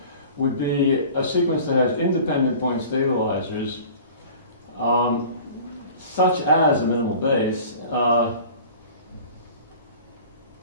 would be a sequence that has independent point stabilizers, such as a minimal base.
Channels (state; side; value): inverted; both; correlation -0.43